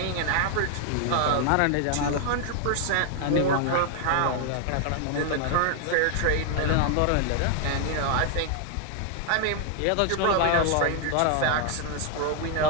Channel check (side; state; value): both; different; correlation 0.00